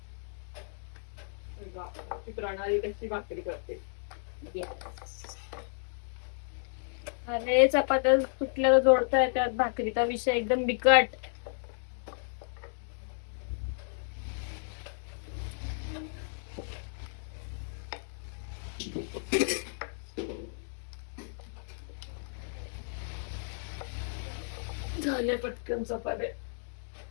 ती प्रणाली कशी भाकरी करते. अरे चपात्या तुटल्याला जोडता येतात, भाकरीचा विषय एकदम बिकट. झाले पटकन चपात्या.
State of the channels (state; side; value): silent; right; digital silence